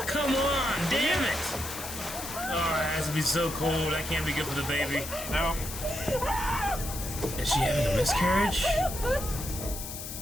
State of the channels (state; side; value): noise; left; hiss, 8 dB below the sound